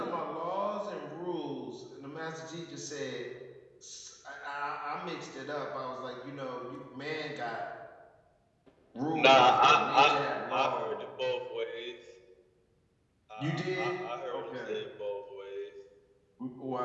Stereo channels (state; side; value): identical; both; correlation 1.00